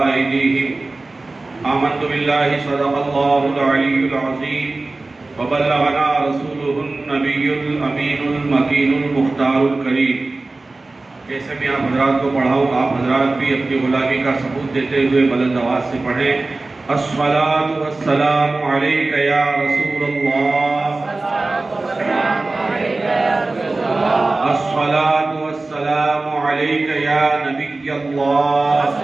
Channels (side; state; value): left; quieter; 3.3 dB